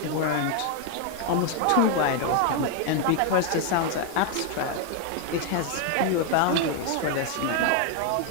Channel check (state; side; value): different; both; correlation 0.01